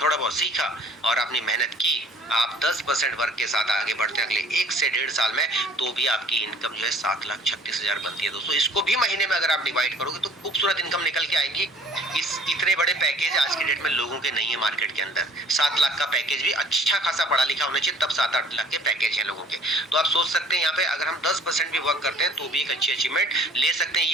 सीखा और आपने मेहनत की, आप 10% वर्क के साथ आगे बढ़ते हैं अगले 1 से 1.5 साल में, तो भी आपकी इनकम जो है 7,36,000 बनती है दोस्तों। इसको भी महीने में अगर आप डिवाइड करोगे तो खूबसूरत इनकम निकल के आएगी। इतने बड़े पैकेज आज के डेट में लोगों के नहीं है मार्केट के अंदर। 7 लाख का पैकेज भी अच्छा खासा पढ़ा लिखा होना चाहिए, तब 7-8 लाख के पैकेज है लोगों के। तो आप सोच सकते हैं यहाँ पे अगर हम 10% भी वर्क करते हैं तो भी एक अच्छी अचीवमेंट ले सकते हैं।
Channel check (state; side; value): normal; both; correlation 0.51